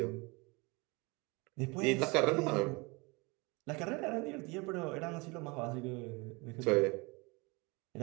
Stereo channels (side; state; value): left; quieter; 27.0 dB